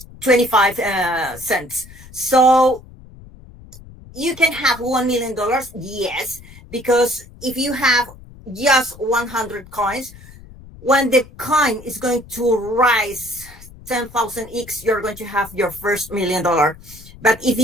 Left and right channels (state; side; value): noise; left; rumble, 20 dB below the sound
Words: 25 cents. So you can have $1 million, yes, because if you have just 100 coins, when the coin is going to rise 10,000x, you're going to have your first $1 million. But if